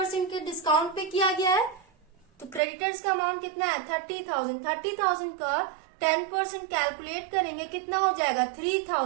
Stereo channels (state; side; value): drops out; left; at 2.6 s